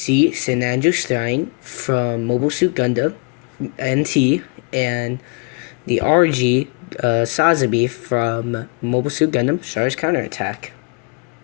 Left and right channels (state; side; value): quieter; right; 32.8 dB